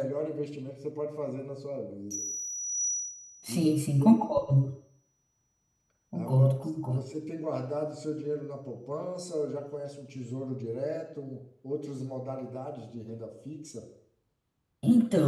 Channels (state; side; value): identical; both; correlation 1.00